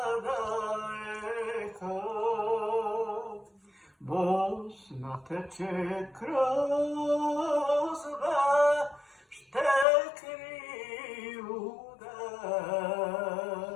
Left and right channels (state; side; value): drops out; right; at 9.9 s